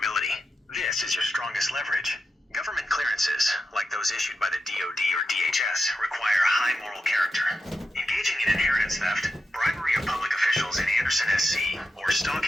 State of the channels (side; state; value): both; normal; correlation 0.89